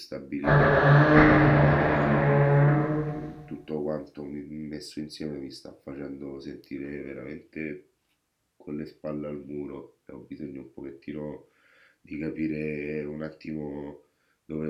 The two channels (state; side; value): identical; both; correlation 1.00